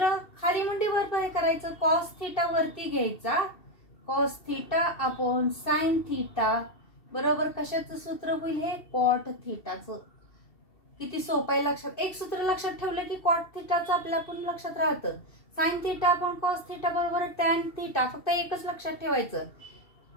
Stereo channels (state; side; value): late; right; 2.7 ms